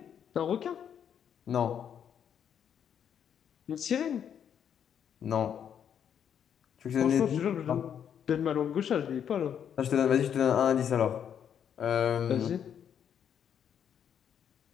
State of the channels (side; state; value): right; quieter; 8.6 dB